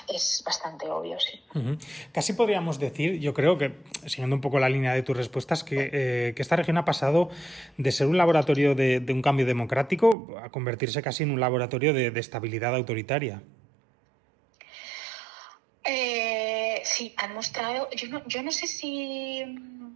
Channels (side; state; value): left; drops out; at 10.2 s